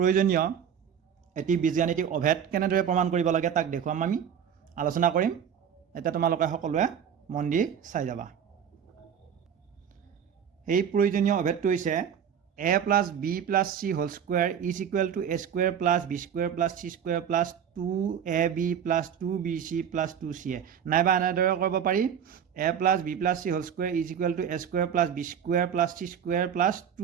এটি বীজগাণিতিক অভেদ কেনেদৰে প্ৰমাণ কৰিব লাগে তাক দেখুৱাম আমি আলোচনা কৰিম। এতিয়া তোমালোকে সকলোৱে মন দি চাই যাবা। এই প্ৰয়োজনীয় অভেদটো হৈছে a plus b plus c whole square is equal to a square plus b square plus c square plus 2ab plus 2bc plus 2ca। নাইবা এনেদৰে কৰিব পাৰি a plus b plus c whole square is equal to a square plus b square plus c square plus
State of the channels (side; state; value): left; quieter; 8.3 dB